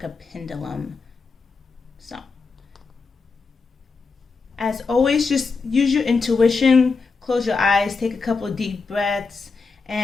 a pendulum. So, as always, just use your intuition. Close your eyes, take a couple of deep breaths,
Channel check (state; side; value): quieter; right; 4.5 dB